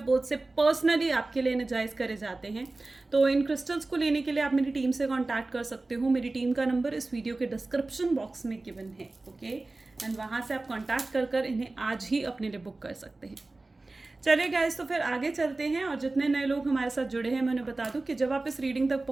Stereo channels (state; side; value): quieter; left; 3.2 dB